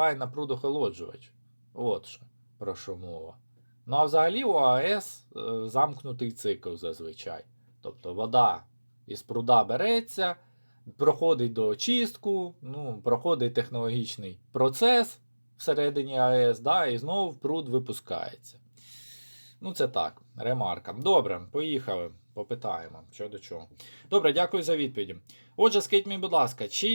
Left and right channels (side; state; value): both; inverted; correlation -1.00